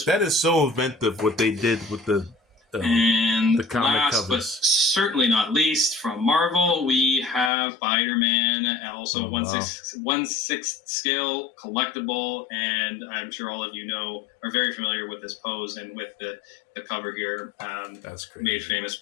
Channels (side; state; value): right; drops out; at 7.5 s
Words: That is so inventive what they did with the comic last, covers. But certainly not least, from Marvel, we have Spider-Man, also 1/6 scale collectible, and I'm sure all of you are very familiar with this pose and with the cover here. That's great. Made famous